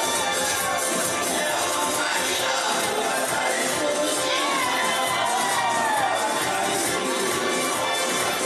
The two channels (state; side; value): identical; both; correlation 1.00